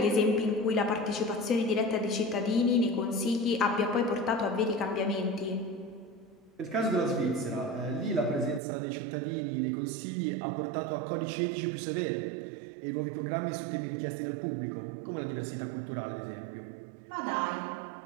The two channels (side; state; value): left; drops out; at 8.6 s